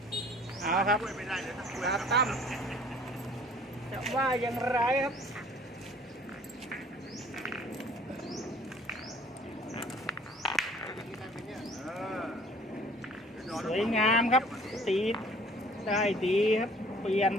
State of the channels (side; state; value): both; normal; correlation 0.53